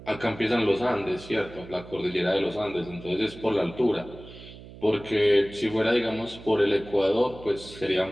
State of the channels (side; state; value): right; noise; hum, 17 dB below the sound